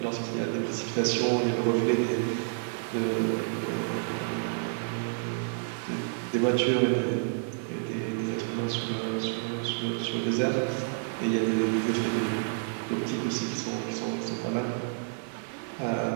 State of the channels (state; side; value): silent; left; digital silence